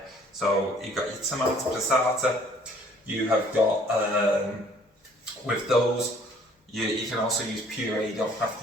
So you've got your tomato passata, you have got, with those, you can also use puree, you don't have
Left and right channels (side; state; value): both; normal; correlation 0.58